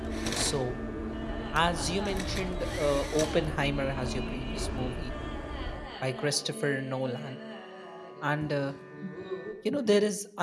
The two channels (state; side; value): identical; both; correlation 1.00